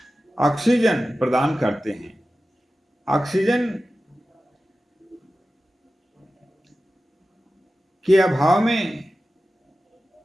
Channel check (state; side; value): normal; both; correlation 0.94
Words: ऑक्सीजन प्रदान करते हैं। ऑक्सीजन के अभाव में